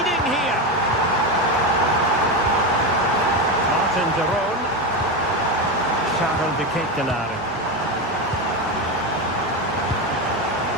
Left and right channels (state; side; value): normal; both; correlation 0.15